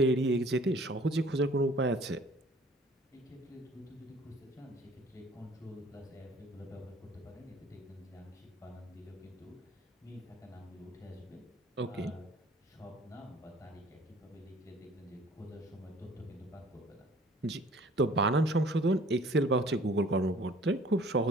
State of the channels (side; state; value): both; normal; correlation 0.52